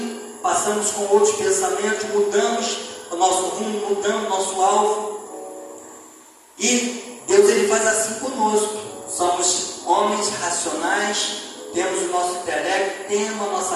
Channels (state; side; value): identical; both; correlation 1.00